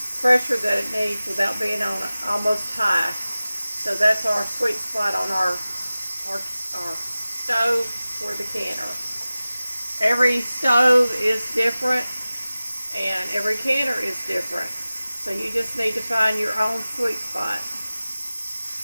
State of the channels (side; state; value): both; inverted; correlation -0.97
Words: pressure that it needs without being on almost high. So that's our sweet spot on our stove for the canner. Every stove is different and every canner is different. So you just need to find your own sweet spot.